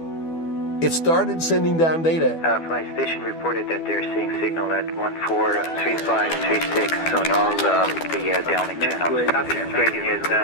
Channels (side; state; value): right; late; 12 ms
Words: it started sending down data. Flight station reported that they're seeing signal at 143536 on all the downlink channels. Great news.